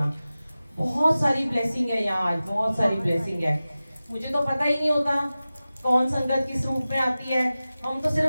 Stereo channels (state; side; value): inverted; both; correlation -0.96